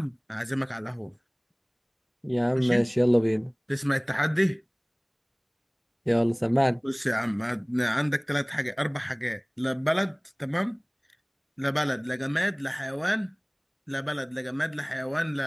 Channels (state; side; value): identical; both; correlation 1.00